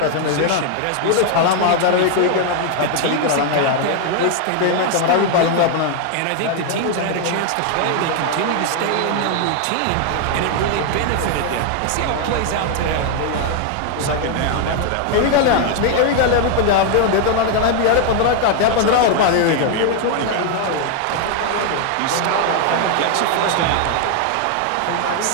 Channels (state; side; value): different; both; correlation 0.00